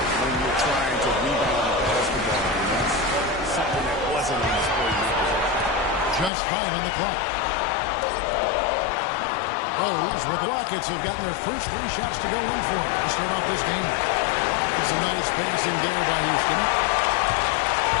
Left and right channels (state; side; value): drops out; right; at 6.3 s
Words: when you're trying to rebound the basketball, and that's something that wasn't on display. Just 5 on the clock. Rose with the Rockets have gotten their first 3 shots to go in for it to start off this game. It's a nice passing there by Houston.